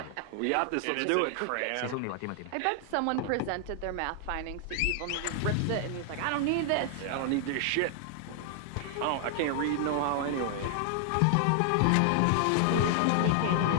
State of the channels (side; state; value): both; different; correlation 0.00